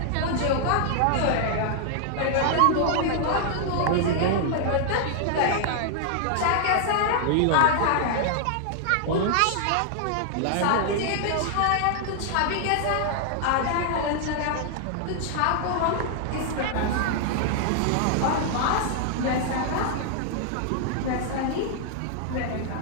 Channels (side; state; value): both; different; correlation -0.01